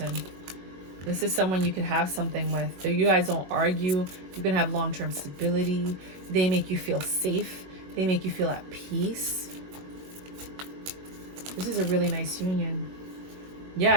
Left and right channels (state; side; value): late; left; 21 ms